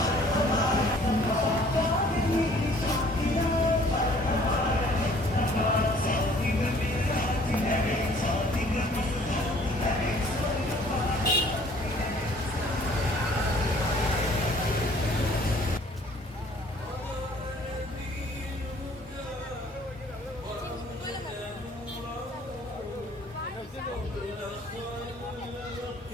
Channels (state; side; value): normal; both; correlation 0.56